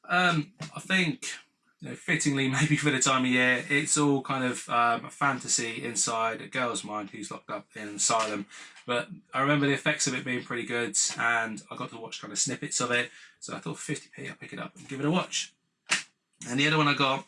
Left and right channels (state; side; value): identical; both; correlation 1.00